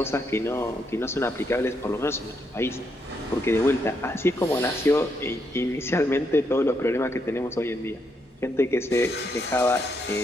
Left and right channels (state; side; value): normal; both; correlation 0.78